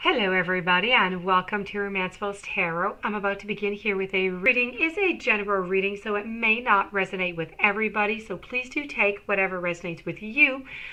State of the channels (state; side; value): identical; both; correlation 1.00